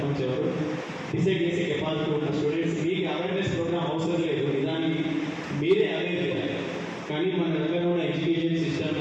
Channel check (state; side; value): identical; both; correlation 1.00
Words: ఎవరు డిసైడ్ చేసే కెపాసిటీ ఉన్న స్టూడెంట్స్ మీకు అవేర్నెస్ ప్రోగ్రామ్ అవసరం లేదు. నిజానికి మీరే అవేర్ చేయాలి. కానీ మన దగ్గర ఉన్న ఎడ్యుకేషన్ సిస్టమ్